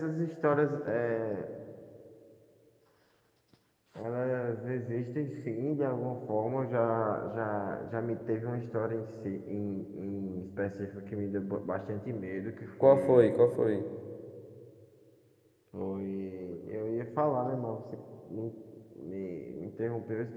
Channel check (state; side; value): identical; both; correlation 1.00